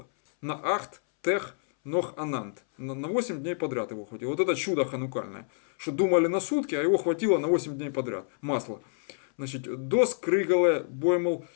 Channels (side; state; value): right; silent; 59 dB below the other